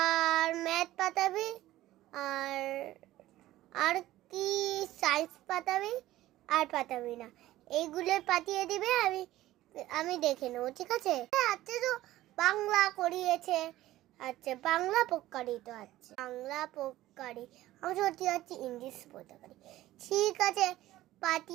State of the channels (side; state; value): left; quieter; 15.5 dB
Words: ম্যাথ পাঠাবি, আর আর কি সায়েন্স পাঠাবি, আর পাঠাবি না। এইগুলো পাঠিয়ে দিবে, আমি দেখে নেবো, ঠিক আছে? আচ্ছা, তো বাংলা করিয়েছে, আচ্ছা বাংলা পক্কারি তো আছে, বাংলা পক্কারি। আমি সত্যি যাচ্ছি ইংলিশ পক্কারি। ঠিক আছে,